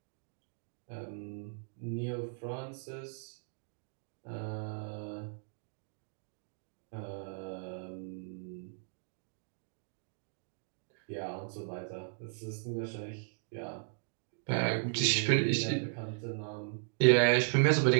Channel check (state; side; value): silent; left; digital silence